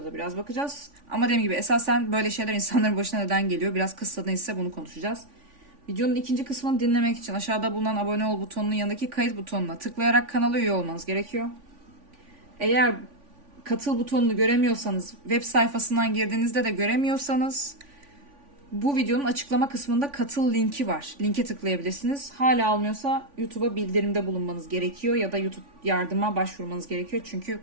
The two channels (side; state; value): left; late; 3.5 ms